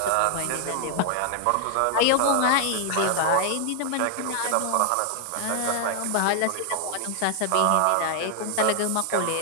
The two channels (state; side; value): different; both; correlation 0.00